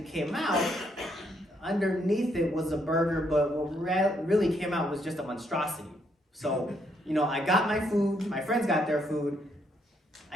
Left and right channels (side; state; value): both; normal; correlation 0.73